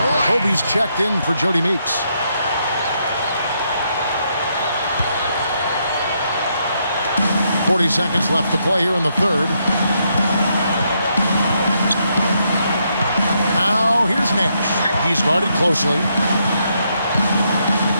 Kobe's checked in for Jody Meeks. .40 seconds left to play here in the third. Now here's Nash. He's guarded closely.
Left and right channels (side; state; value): both; inverted; correlation -0.77